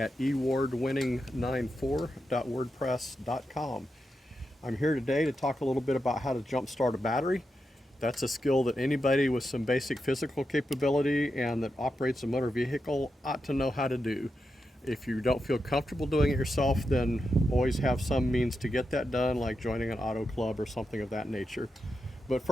ewardwinning94.wordpress.com. I'm here today to talk a little bit about how to jump start a battery. That's a skill that anybody with some basic physical capability and that operates a motor vehicle ought to know how to do. If you don't feel comfortable doing it yourself, then always have some means to get that done, like joining an auto club or something of that nature. But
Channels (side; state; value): both; normal; correlation 0.87